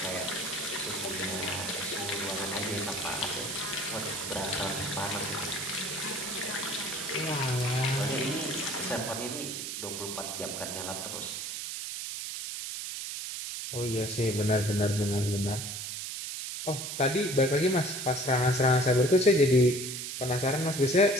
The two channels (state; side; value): noise; right; hiss, 5 dB below the sound